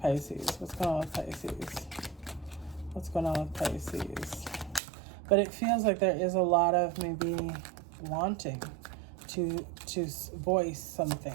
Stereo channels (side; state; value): left; drops out; at 4.8 s